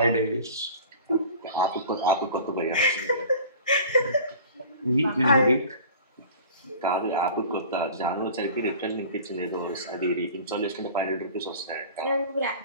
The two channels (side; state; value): both; inverted; correlation -0.43